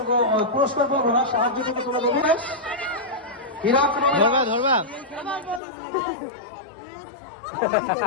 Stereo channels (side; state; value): right; drops out; at 5.6 s